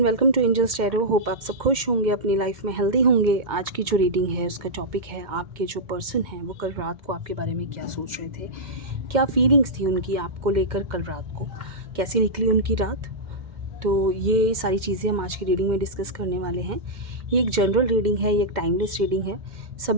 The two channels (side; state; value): left; late; 2.1 ms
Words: welcome to angels tarot. Hope आप सब खुश होंगे, अपनी लाइफ में हेल्दी होंगे। आज की जो रीडिंग है उसका टॉपिक है आपके जो पर्सन हैं वो कल रात को आपके बारे में क्या सोच रहे थे, क्या फीलिंग्स थी उनकी आपको लेकर कल रात को, कैसी निकली उनकी रात। तो ये सारी चीज़ें हम आज की रीडिंग में डिस्कस करने वाले हैं। ये एक जनरल रीडिंग है, ये एक टाइमलेस रीडिंग है।